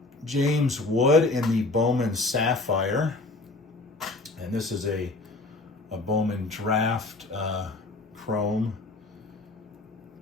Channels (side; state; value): right; quieter; 3.2 dB